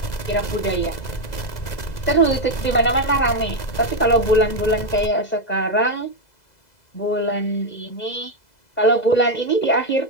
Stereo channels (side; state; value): right; late; 2.0 ms